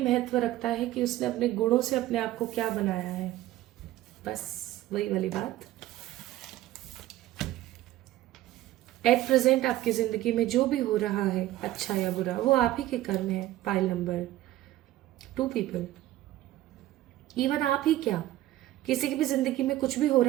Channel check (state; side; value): quieter; left; 14.9 dB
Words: महत्व रखता है कि उसने अपने गुणों से अपने आप को क्या बनाया है। बस वही वाली बात। एट प्रेजेंट आपकी जिंदगी में जो भी हो रहा है अच्छा या बुरा, वो आप ही के कर्म है। पाइल नंबर 2 पीपल, इवन आप ही क्या, किसी की भी जिंदगी में कुछ भी हो